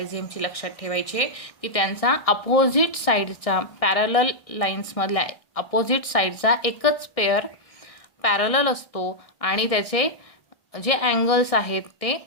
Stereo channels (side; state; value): right; late; 1.7 ms